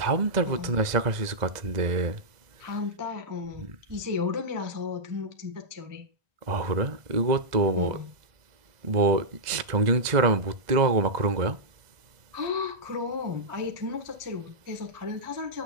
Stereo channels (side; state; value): left; late; 2.0 ms